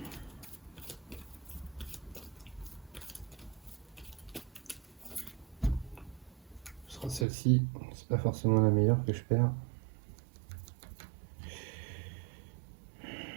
Ce sera celle-ci. C'est pas forcément la meilleure que je perds.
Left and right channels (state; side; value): drops out; left; at 7.2 s